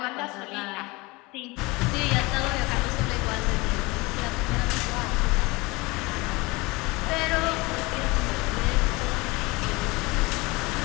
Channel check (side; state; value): right; quieter; 24.0 dB